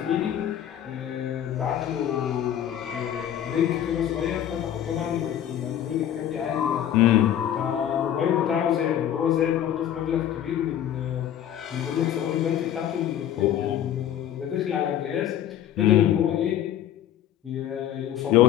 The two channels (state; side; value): quieter; right; 10.8 dB